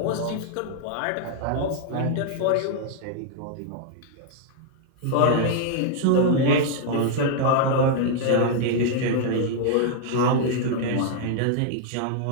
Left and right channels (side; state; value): both; different; correlation 0.00